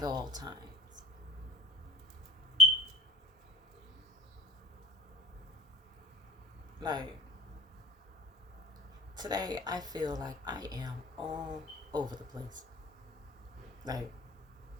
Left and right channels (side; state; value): both; normal; correlation 0.37